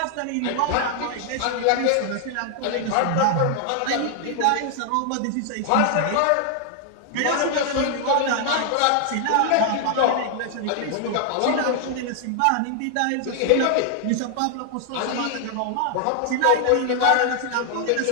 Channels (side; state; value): both; different; correlation 0.00